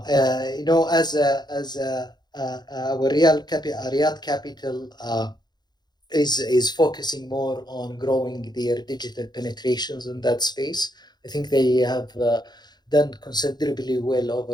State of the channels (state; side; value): late; right; 0.20 ms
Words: Riyadh Capital is focusing more on growing their digital penetrations in that space. I think they have done considerably well